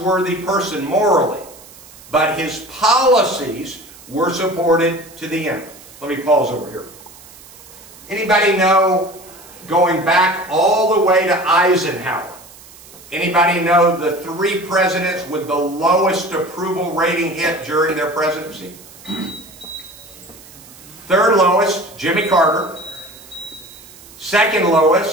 person morally, but his policies were supported to the end. Let me pause over here. Anybody know, going back all the way to Eisenhower, anybody know the 3 presidents with the lowest approval rating hit during their presidency? Third lowest, Jimmy Carter. Second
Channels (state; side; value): noise; right; hiss, 21 dB below the sound